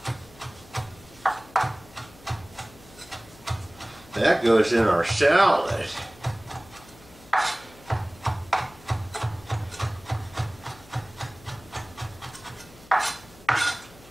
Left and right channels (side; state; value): left; noise; hum, 23 dB below the sound